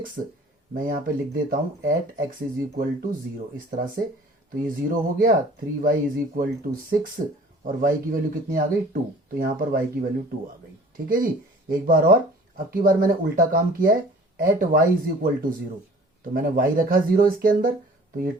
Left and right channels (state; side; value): normal; both; correlation 0.49